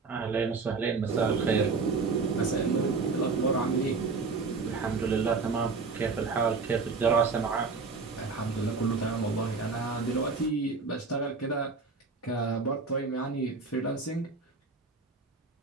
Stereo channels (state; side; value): quieter; left; 4.5 dB